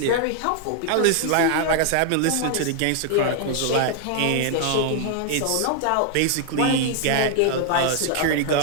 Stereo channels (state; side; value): different; both; correlation 0.00